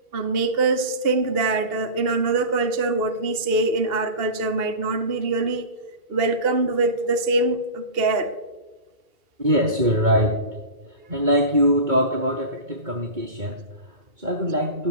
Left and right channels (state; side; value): late; left; 2.7 ms